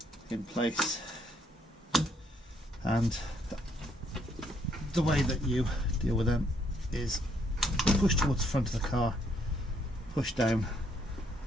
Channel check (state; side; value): normal; both; correlation 0.70